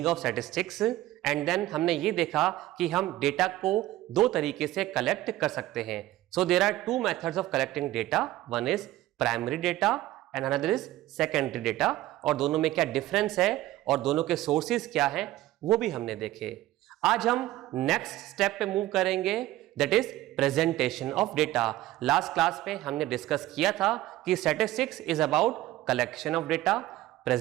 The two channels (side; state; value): left; quieter; 15.7 dB